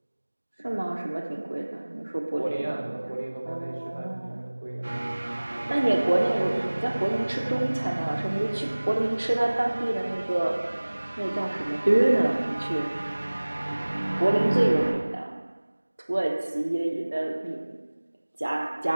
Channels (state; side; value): inverted; both; correlation -1.00